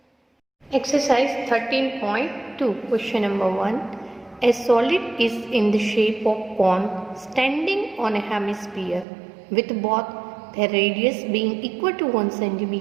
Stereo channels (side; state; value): left; drops out; at 9.1 s